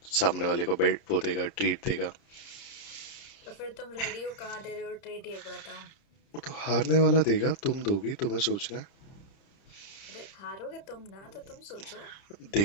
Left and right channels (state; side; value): late; right; 30 ms